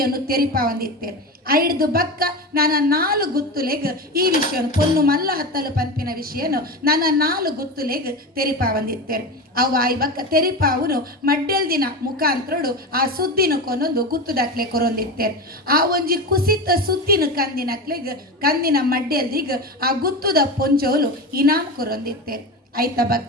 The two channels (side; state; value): both; normal; correlation 0.23